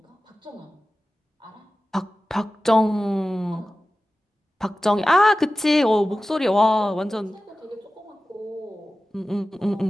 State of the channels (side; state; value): both; normal; correlation 0.95